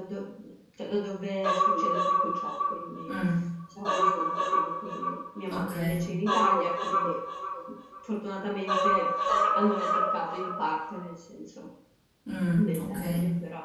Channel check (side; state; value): both; identical; correlation 1.00